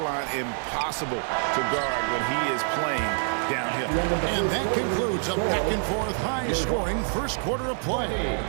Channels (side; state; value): left; silent; 61 dB below the other